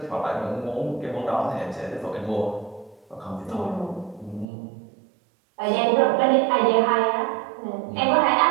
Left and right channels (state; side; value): drops out; left; at 4.5 s